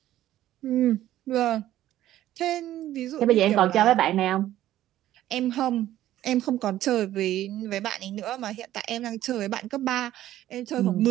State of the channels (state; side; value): quieter; left; 13.4 dB